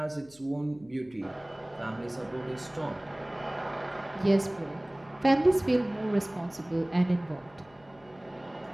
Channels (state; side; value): noise; left; hum, 27 dB below the sound